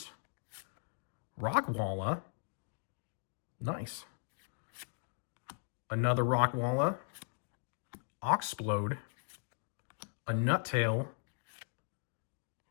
Rockwalla. Nice. Another Rockwalla. Oxplode. A Nuttail.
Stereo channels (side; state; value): right; silent; digital silence